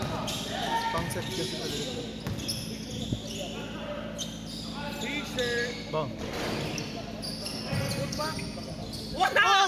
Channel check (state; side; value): identical; both; correlation 1.00